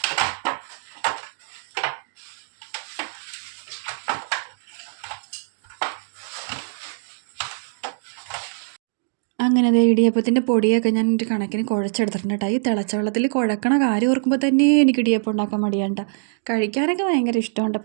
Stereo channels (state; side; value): silent; left; digital silence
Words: അങ്ങനെ ഇടിയപ്പത്തിൻ്റെ പൊടിയൊക്കെ ഞാൻ ഒരു കണക്കിന് കുഴച്ചെടുത്തിട്ടുണ്ട് കേട്ടോ. ഈ തിളച്ച വെള്ളത്തിൽ കുഴക്കണ കാര്യം ഓർക്കുമ്പോൾ തന്നെ എനിക്ക് ഇടിയപ്പം ഉണ്ടാക്കാൻ മടിയാണ്ട. കഴിക്കാനൊക്കെ ഭയങ്കര ഇഷ്ടമുണ്ട്,